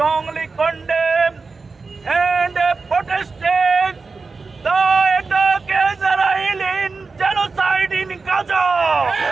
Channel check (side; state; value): left; quieter; 4.3 dB